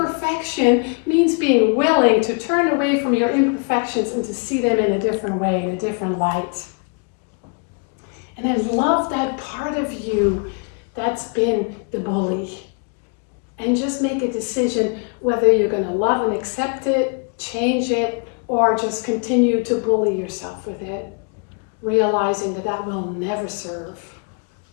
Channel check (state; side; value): quieter; right; 39.1 dB